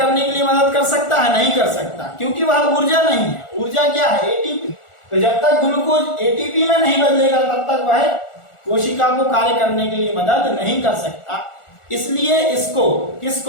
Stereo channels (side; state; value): right; late; 1.4 ms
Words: के लिए मदद कर सकता है, नहीं कर सकता, क्योंकि वह ऊर्जा नहीं है। ऊर्जा क्या है, एटीपी। तो जब तक ग्लूकोज एटीपी में नहीं बदलेगा तब तक वह कोशिका को कार्य करने के लिए मदद नहीं कर सकता। इसलिए इसको